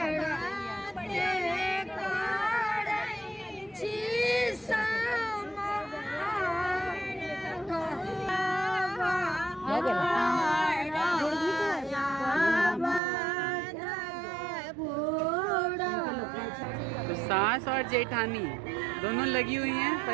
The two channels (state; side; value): drops out; left; at 13.0 s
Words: तो सास और जेठानी दोनों लगी हुई हैं